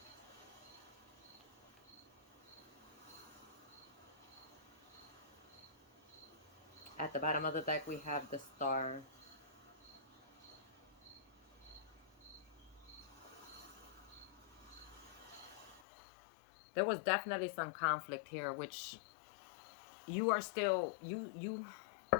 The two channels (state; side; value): drops out; right; at 15.8 s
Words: At the bottom of the deck, we have the Star. There was definitely some conflict here, which you are still you